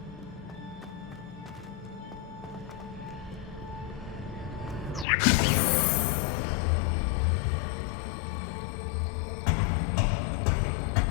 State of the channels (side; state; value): right; drops out; at 5.1 s